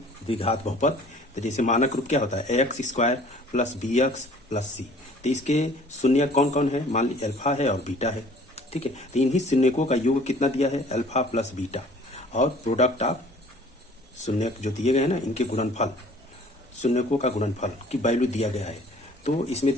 द्विघात बहुपद। तो जैसे मानक रूप क्या होता है, x square plus b x plus c. तो इसके शून्य कौन कौन है, मान लीजिए अल्फा है और बीटा है, ठीक है। तो इन्हीं शून्यकों का योग कितना दिया है, अल्फा प्लस बीटा, और प्रोडक्ट ऑफ शून्य जो दिए गए हैं ना, इनके गुणनफल, शून्यकों का गुणनफल की वैल्यू दिया गया है। तो इसमें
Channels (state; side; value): normal; both; correlation 0.51